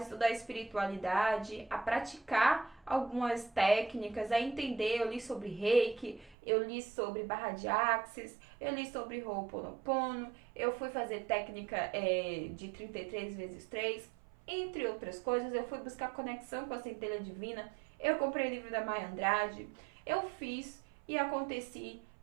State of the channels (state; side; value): drops out; left; at 6.4 s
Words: espiritualidade, a praticar algumas técnicas, a entender. Eu li sobre Reiki, eu li sobre barra de Axis, eu li sobre Ho'oponopono, eu fui fazer técnica de 33 vezes 3, entre outras coisas. Eu fui buscar conexão com a centelha divina, eu comprei o livro da Maya Andrade, eu fiz e aconteci